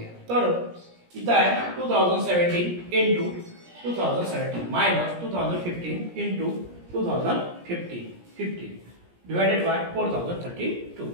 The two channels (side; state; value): left; late; 17 ms